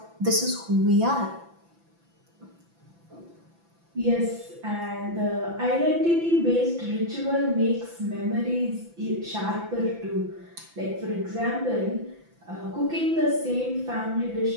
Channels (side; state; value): left; late; 5.9 ms